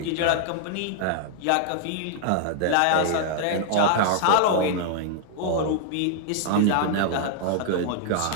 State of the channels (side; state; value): both; different; correlation -0.01